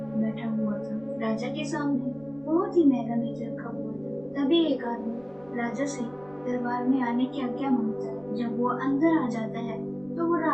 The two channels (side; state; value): right; noise; rumble, 28 dB below the sound